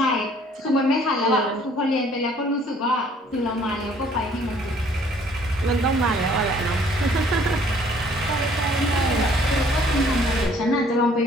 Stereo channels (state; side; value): normal; both; correlation 0.59